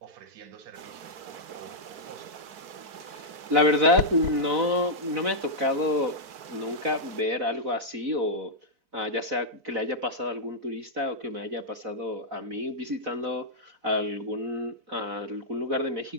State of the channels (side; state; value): left; late; 4.6 ms